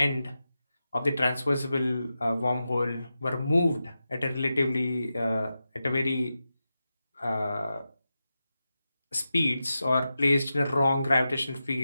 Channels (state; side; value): inverted; both; correlation -0.91